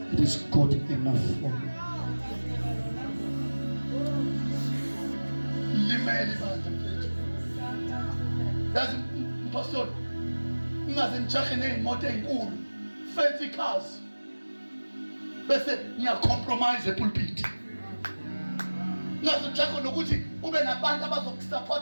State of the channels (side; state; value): both; inverted; correlation -1.00